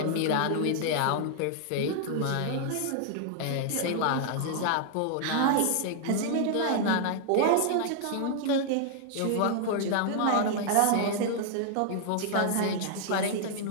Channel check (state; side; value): different; both; correlation 0.00